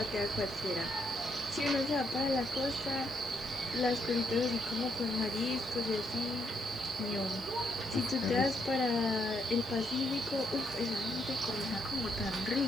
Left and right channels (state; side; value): normal; both; correlation 0.75